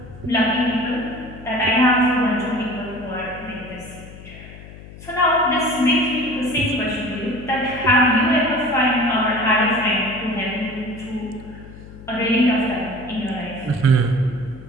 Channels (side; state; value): left; noise; hum, 17 dB below the sound